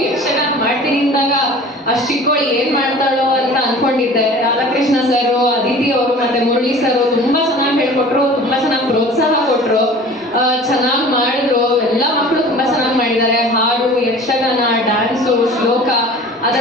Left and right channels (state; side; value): normal; both; correlation 0.43